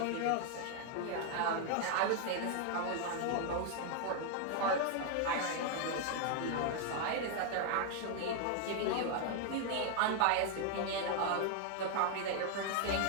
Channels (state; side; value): different; both; correlation 0.00